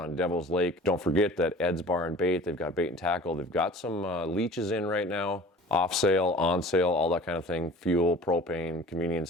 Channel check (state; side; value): normal; both; correlation 0.43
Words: Devil's Lake, don't forget that Ed's Bar and Bait, they've got bait and tackle. They've got some leeches in right now, off sale, on sale, all that kind of thing, fuel, propane,